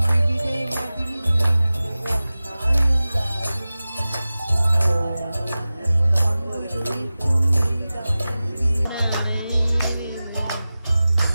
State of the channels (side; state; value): both; inverted; correlation -0.96